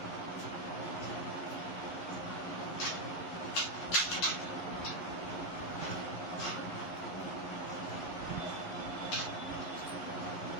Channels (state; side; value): late; right; 11 ms